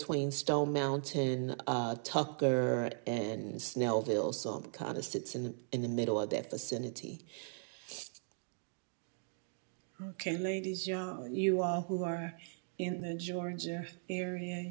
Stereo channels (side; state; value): left; silent; digital silence